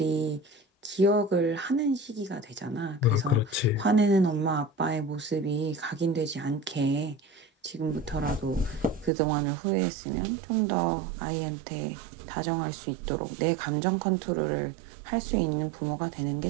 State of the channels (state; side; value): drops out; left; at 9.1 s